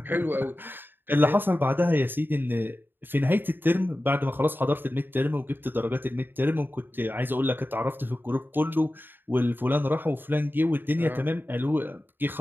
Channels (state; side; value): late; left; 0.096 ms